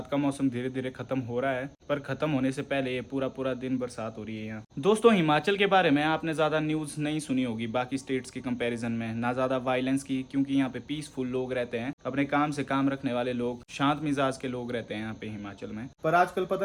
का मौसम धीरे धीरे खत्म हो रहा है, पर खत्म होने से पहले ये पूरा दिन बरसात हो रही है यहाँ। दोस्तों हिमाचल के बारे में आपने ज्यादा न्यूज नहीं सुनी होगी बाकी स्टेट्स के कंपैरिजन में, ना ज्यादा वायलेंस की, क्योंकि यहाँ पे पीसफुल लोग रहते हैं, अपने काम से काम रखने वाले लोग, शांत मिजाज के लोग रहते हैं यहाँ पे हिमाचल में। पर आजकल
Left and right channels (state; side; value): identical; both; correlation 1.00